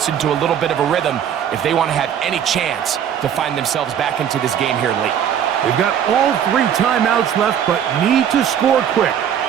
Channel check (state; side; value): quieter; left; 9.1 dB